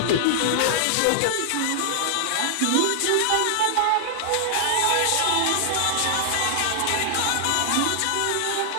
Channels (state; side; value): different; both; correlation -0.01